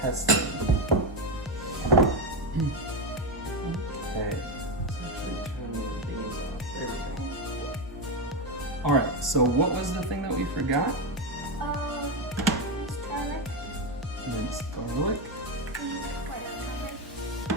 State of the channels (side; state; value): both; normal; correlation 0.11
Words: Okay. All right, so what was the thing that we forgot? Garlic. Minced garlic.